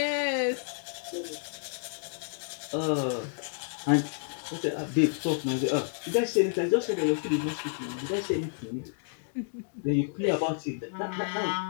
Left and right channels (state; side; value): silent; right; digital silence